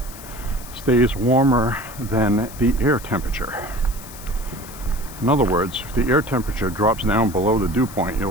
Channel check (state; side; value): noise; left; hiss, 16 dB below the sound